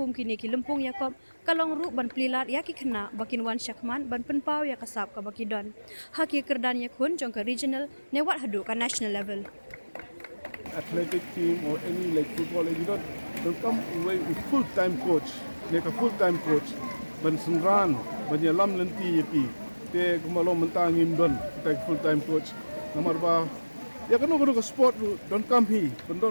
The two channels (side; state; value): both; inverted; correlation -1.00